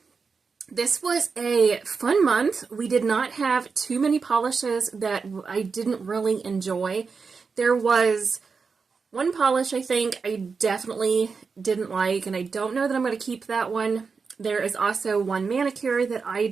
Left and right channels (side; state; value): left; quieter; 5.1 dB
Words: This was a fun month. We did not have too many polishes that I didn't really enjoy. There was one polish I think I definitely didn't like, and I don't know that I'm going to keep that one. There is also one manicure that I